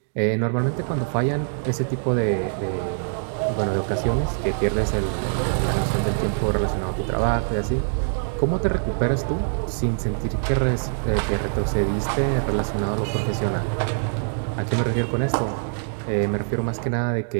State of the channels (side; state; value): left; silent; digital silence